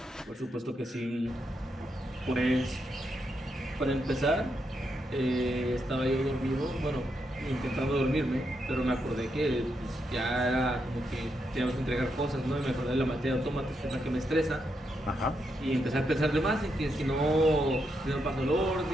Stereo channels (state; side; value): normal; both; correlation 0.81